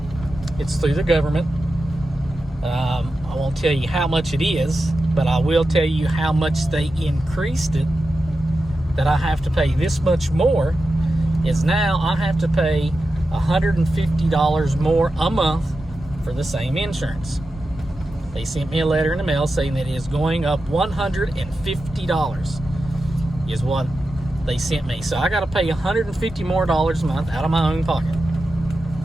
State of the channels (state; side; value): normal; both; correlation 0.91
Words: It's through the government. I won't tell you how much it is, but I will tell you how much they increased it, that I have to pay this much more. Is now I have to pay $150 more a month for the same insurance. They sent me a letter in the mail saying that it is going up $150 is what they sent me. So I got to pay $150 more a month out of my own pocket.